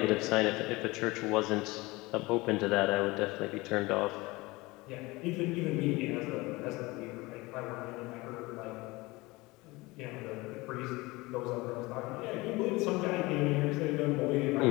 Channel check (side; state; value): right; quieter; 22.3 dB